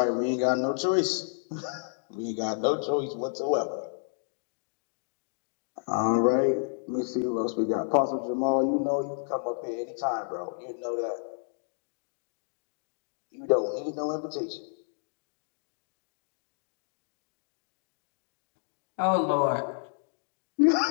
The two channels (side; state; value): right; silent; digital silence